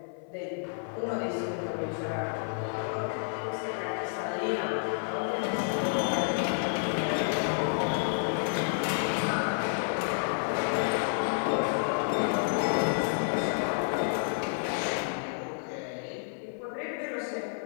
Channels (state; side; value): silent; right; 58 dB below the other